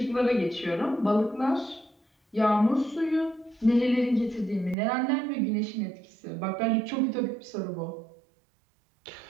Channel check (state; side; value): drops out; left; at 4.8 s